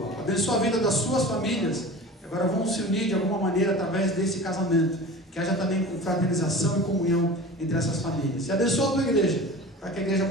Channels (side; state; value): both; normal; correlation 0.37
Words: Abençoa a vida das suas famílias, que agora vão se unir de alguma maneira através desse casamento, que haja também fraternização e comunhão entre essas famílias. E abençoa a tua igreja, para que a igreja